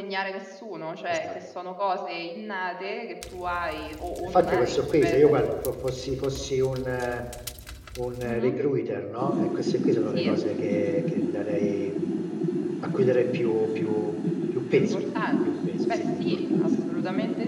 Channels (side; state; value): both; identical; correlation 1.00